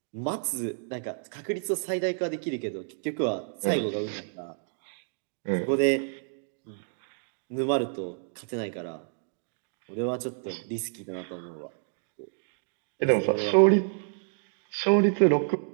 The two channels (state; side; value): silent; left; digital silence